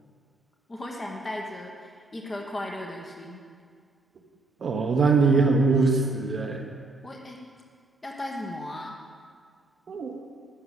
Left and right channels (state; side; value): quieter; left; 3.3 dB